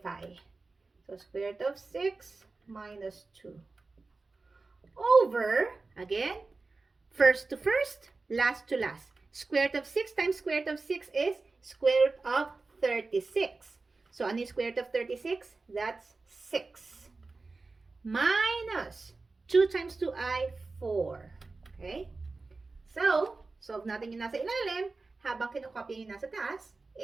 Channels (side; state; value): left; quieter; 3.7 dB